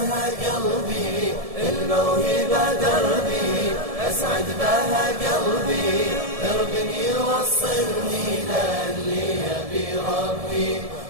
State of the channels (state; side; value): late; left; 1.7 ms